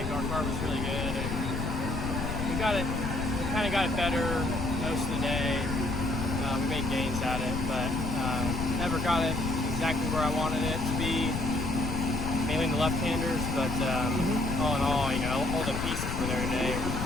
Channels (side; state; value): left; noise; rumble, 3 dB below the sound